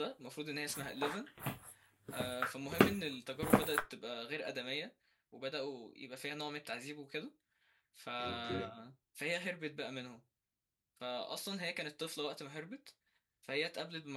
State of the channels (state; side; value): identical; both; correlation 1.00